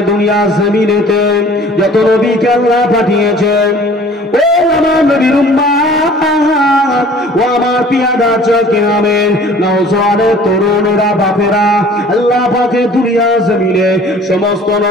দুনিয়া জমিনেতে যত নবীকে আল্লাহ পাঠিয়েছেন, ও আমার নবীর উম্মাত, ও আমার পিয়াদা চোখে আমেন নওজওয়ানের তরুণেরা বাপেরা, আল্লাহ পাকে দুনিয়া জমিনে সমস্ত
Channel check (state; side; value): normal; both; correlation 0.49